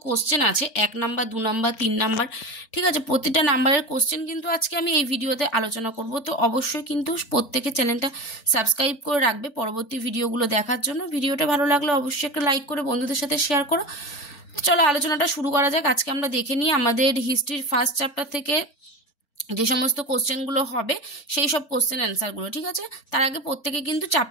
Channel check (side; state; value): right; late; 4.4 ms